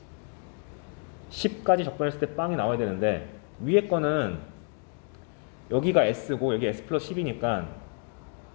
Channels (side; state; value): right; quieter; 38.1 dB